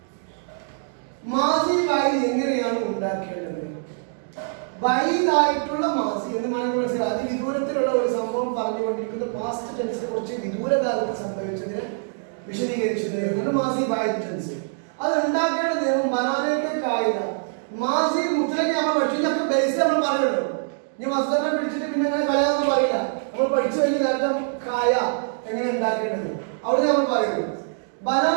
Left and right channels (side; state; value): left; silent; digital silence